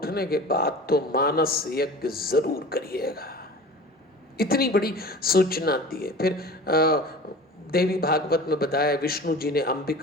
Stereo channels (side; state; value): both; normal; correlation 0.38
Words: के बाद तो मानस यज्ञ जरूर करिएगा। इतनी बड़ी सूचना दी है। फिर देवी भागवत में बताया, विष्णु जी ने